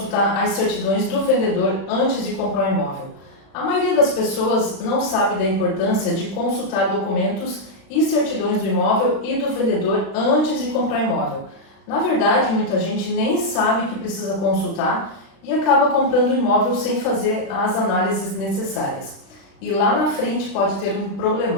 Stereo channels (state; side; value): late; right; 36 ms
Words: as certidões do vendedor antes de comprar um imóvel? A maioria das pessoas não sabe da importância de consultar documentos e certidões do imóvel e do vendedor antes de comprar o imóvel. Na verdade, muita gente nem sabe que precisa consultar e acaba comprando o imóvel sem fazer as análises necessárias. E lá na frente pode ter um